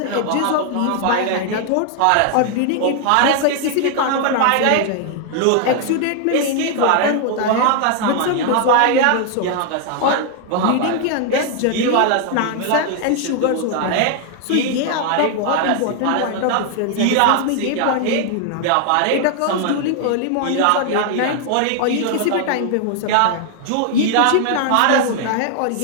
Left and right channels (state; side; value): different; both; correlation 0.00